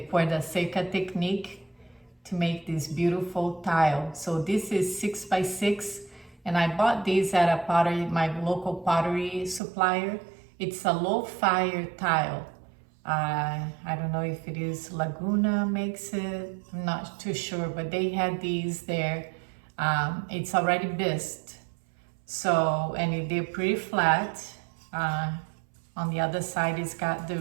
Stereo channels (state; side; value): drops out; left; at 9.6 s